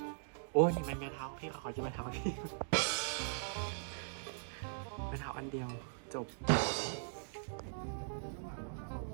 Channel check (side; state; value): left; silent; digital silence